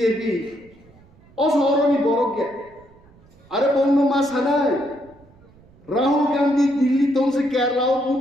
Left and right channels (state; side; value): noise; right; rumble, 27 dB below the sound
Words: असहरनी बरक गे अरे बंगनो मा सानाय राहुल गांधी दिल्ली तंसे केरला